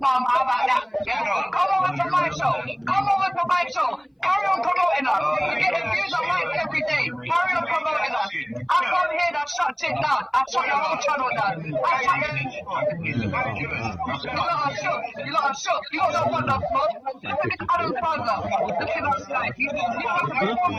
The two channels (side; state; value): both; identical; correlation 1.00